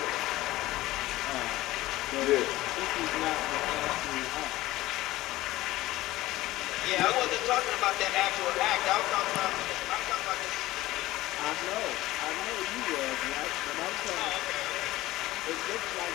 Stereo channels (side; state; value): right; quieter; 17.1 dB